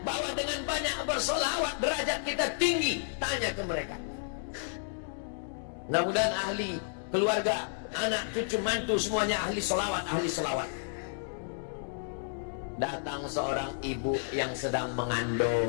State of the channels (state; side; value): silent; right; digital silence